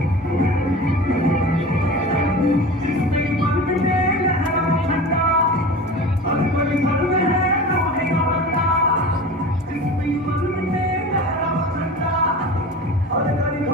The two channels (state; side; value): normal; both; correlation 0.34